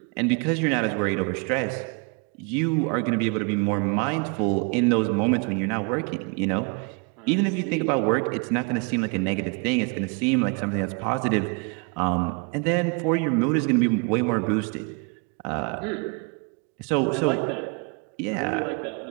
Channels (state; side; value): quieter; left; 34.7 dB